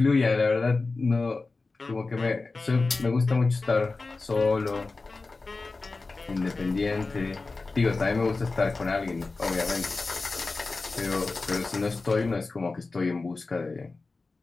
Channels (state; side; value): quieter; right; 3.7 dB